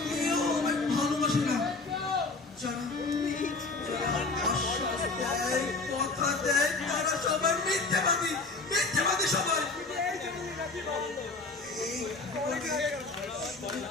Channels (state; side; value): quieter; right; 3.7 dB